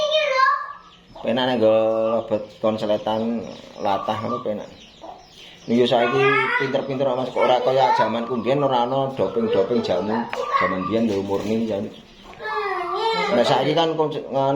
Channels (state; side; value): identical; both; correlation 1.00